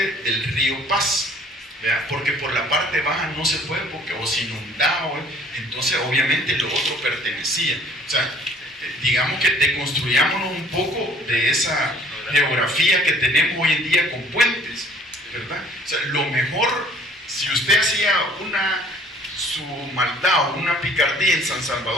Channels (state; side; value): normal; both; correlation 0.55